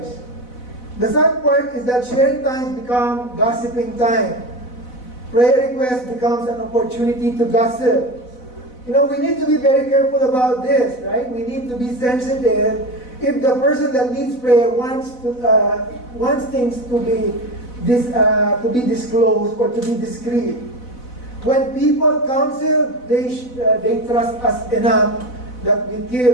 The sad part is that sharing times become gossiping time. Prayer request becomes an opportunity to gossip. We need to be very careful about this, right? We need to be sensitive. If the person that needs prayer wants things to be disclosed or to be discreet. When people counsel, they trust us enough that we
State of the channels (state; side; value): late; right; 4.0 ms